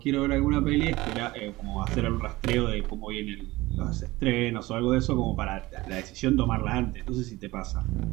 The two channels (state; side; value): quieter; left; 19.5 dB